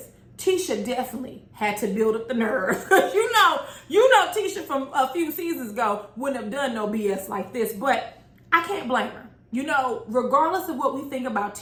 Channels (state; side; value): identical; both; correlation 1.00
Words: Tisha definitely had to build up the nerve. you know Tisha from a few seasons ago wouldn't have done no BS like this, but I can't blame her. You know, regardless of what we think about